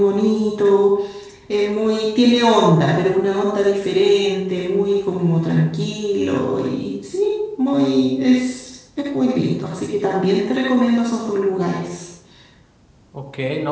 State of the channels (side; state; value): both; identical; correlation 1.00